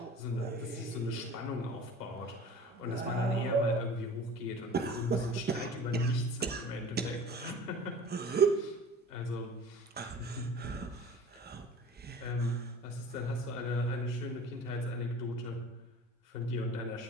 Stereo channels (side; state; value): both; normal; correlation 0.42